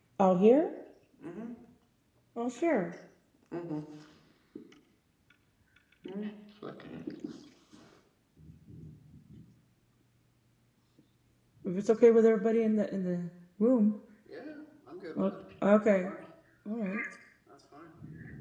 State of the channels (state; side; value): identical; both; correlation 1.00